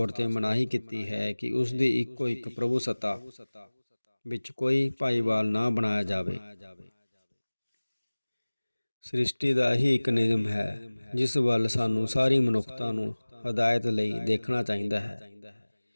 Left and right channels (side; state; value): both; inverted; correlation -1.00